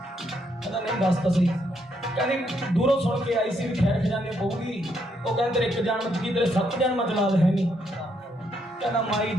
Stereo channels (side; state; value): both; normal; correlation 0.75